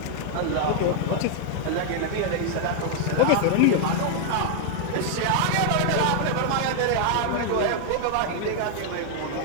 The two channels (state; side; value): different; both; correlation 0.00